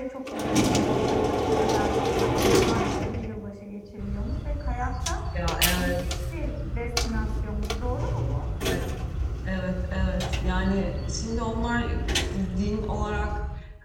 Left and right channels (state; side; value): identical; both; correlation 1.00